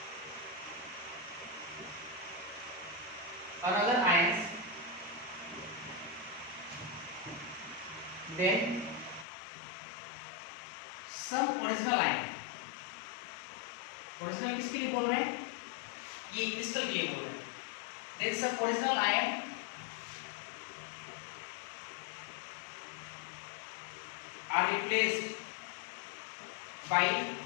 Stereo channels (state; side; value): drops out; right; at 9.2 s